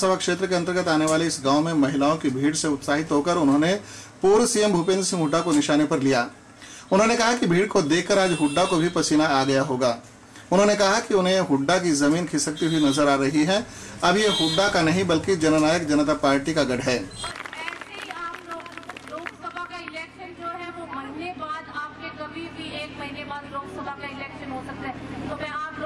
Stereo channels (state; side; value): identical; both; correlation 1.00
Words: क्षेत्र के अंतर्गत आने वाले इस गांव में महिलाओं की भीड़ से उत्साहित होकर उन्होंने पूर्व सीएम भूपेंद्र सिंह हुड्डा को निशाने पर लिया। उन्होंने कहा कि भीड़ को देखकर आज हुड्डा को भी पसीना आ गया होगा। उन्होंने कहा कि उन्हें हुड्डा की जमीन खिसकती हुई नजर आ रही है। अब ये हुड्डा का नहीं बल्कि जननायक जनता पार्टी का गढ़ है। लोकसभा का इलेक्शन जो है वो महीने बाद, आपके कभी भी 1 महीने बाद लोकसभा का इलेक्शन हो सकता है। तो मैं आप